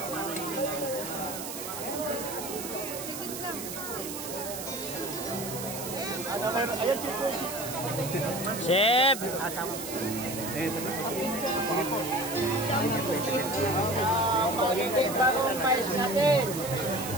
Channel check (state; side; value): noise; right; hiss, 8 dB below the sound